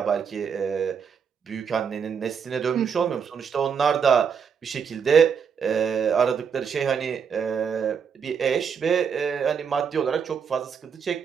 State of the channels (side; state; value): left; quieter; 6.8 dB